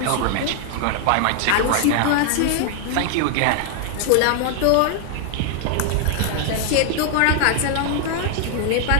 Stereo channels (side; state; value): both; different; correlation 0.00